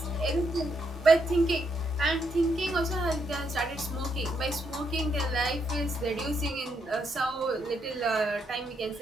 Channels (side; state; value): both; normal; correlation 0.77